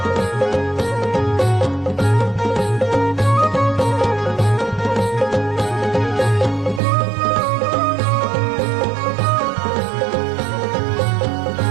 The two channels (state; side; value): drops out; left; at 6.8 s